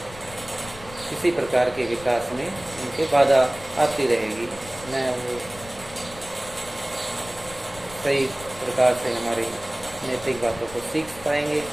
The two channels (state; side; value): noise; left; rumble, 18 dB below the sound